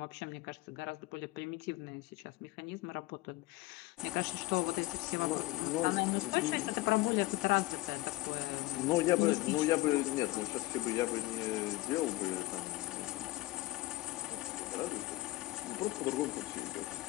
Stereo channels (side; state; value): right; quieter; 18.9 dB